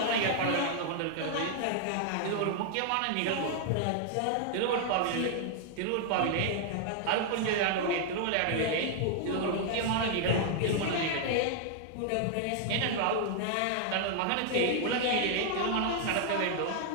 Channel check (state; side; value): different; both; correlation 0.00